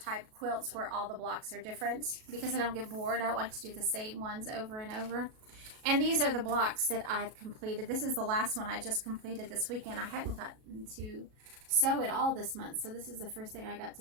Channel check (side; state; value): left; late; 37 ms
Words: quilts where all the blocks are different because I don't get bored. I don't like to do the same ones over and over. And these are the blocks that I've completed. This is the last one I just completed this weekend. I hadn't gotten to sew it all this month, so this is the first thing I got